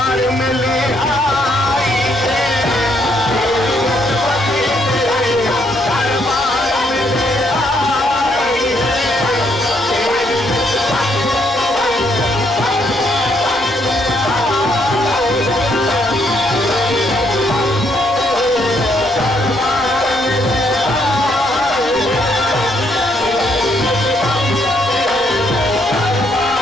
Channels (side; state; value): both; normal; correlation 0.72